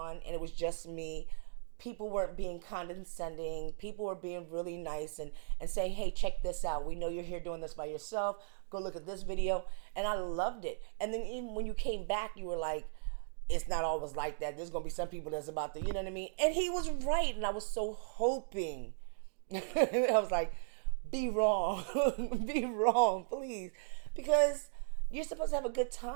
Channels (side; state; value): left; silent; digital silence